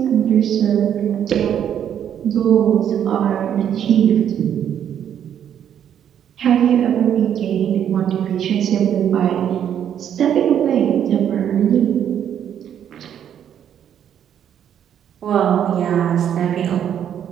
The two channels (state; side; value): quieter; left; 9.4 dB